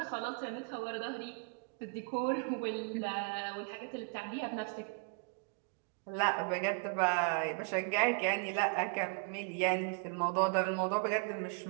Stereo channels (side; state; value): left; quieter; 38.6 dB